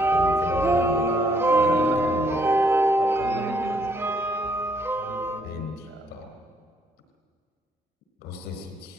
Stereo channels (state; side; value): normal; both; correlation 0.69